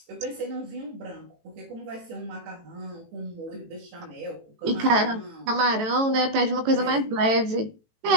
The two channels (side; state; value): left; late; 18 ms